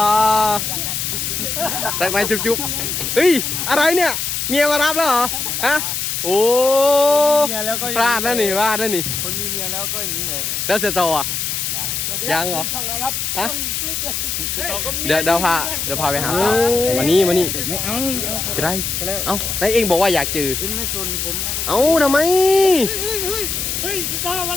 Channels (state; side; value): noise; left; hiss, 2 dB below the sound